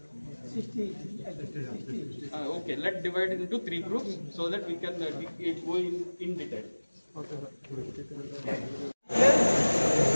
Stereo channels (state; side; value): inverted; both; correlation -1.00